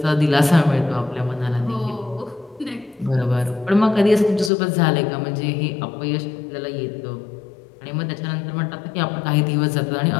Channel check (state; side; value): drops out; right; at 4.5 s